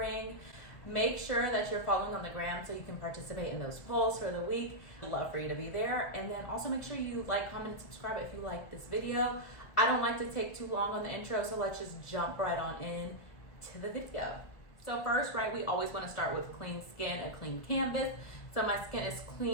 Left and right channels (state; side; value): late; right; 1.7 ms